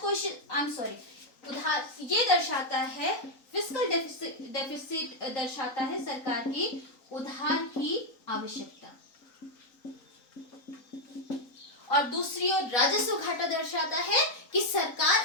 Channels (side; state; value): right; late; 3.9 ms